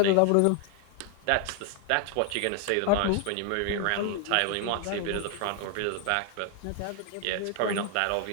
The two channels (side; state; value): both; different; correlation 0.00